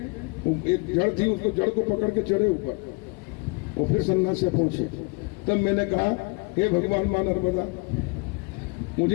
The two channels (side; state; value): right; quieter; 29.9 dB